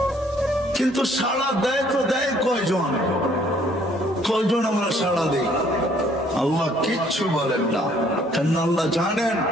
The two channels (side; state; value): both; normal; correlation 0.62